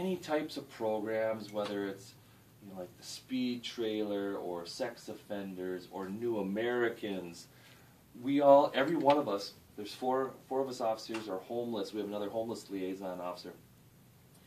types of programs, whether it's, you know, like the speed trailer or sex offenders or new Americans, every one of us, there's four of us officers are homeless. We have another homeless liaison officer.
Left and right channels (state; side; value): identical; both; correlation 1.00